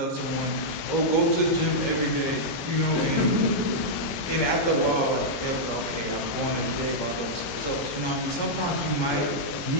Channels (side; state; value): right; late; 21 ms